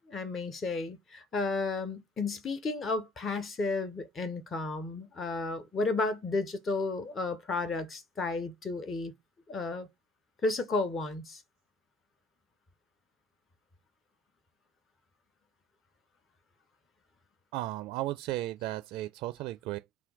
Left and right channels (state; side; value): normal; both; correlation 0.54